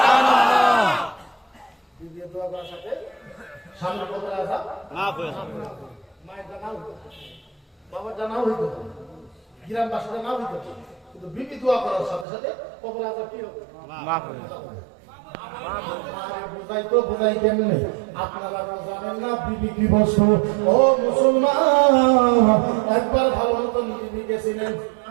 বিবিয়ে দোয়া করার সাথে স্বামীর কবরের আযাব মাফ হয়ে যায়। মায়ের জানাও বাবার জানাও হইতো, গ্রামবাসীর জানাও হইতো, কিন্তু বিবি দোয়া করার সাথে সাথে কবরের আযাব কি হবে? মাফ হয়ে যায়। বুঝাই কেমনে? আপনারা জানেন না বিবি কি বস্তু? ও মুসলমান, একবার ভালো মতো বিবি গেছিলেন।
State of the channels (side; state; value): left; drops out; at 12.2 s